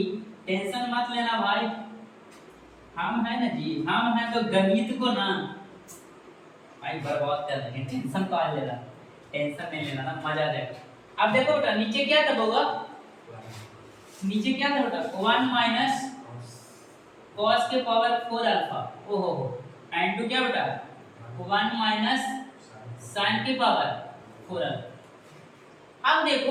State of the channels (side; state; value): both; identical; correlation 1.00